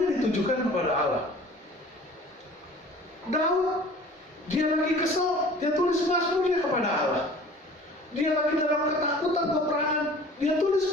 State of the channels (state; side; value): normal; both; correlation 0.46